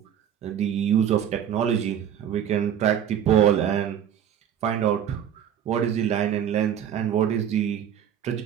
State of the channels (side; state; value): left; quieter; 9.4 dB